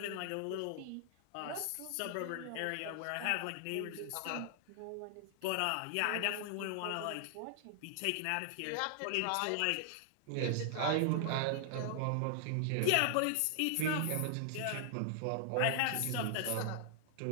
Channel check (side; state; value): both; different; correlation -0.01